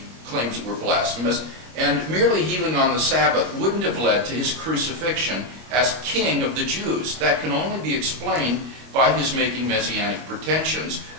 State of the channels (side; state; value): left; late; 25 ms